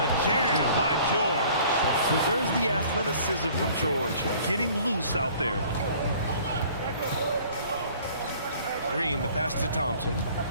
jam by George. There's the athleticism from George, getting loose out there. Green, the pass to Thompson.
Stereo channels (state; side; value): inverted; both; correlation -0.52